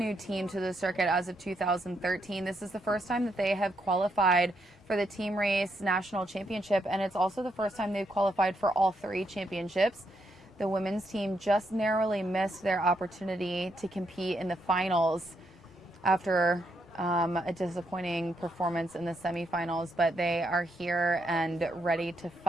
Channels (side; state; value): both; normal; correlation 0.78